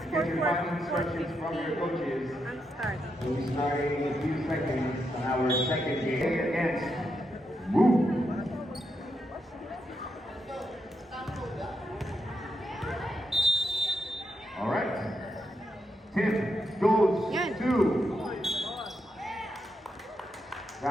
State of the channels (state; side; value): normal; both; correlation 0.82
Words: Get your final 4:50 instructions from your coaches. ang start. We'll be starting in a few seconds on our second game against Woo. All right. Tip goes to.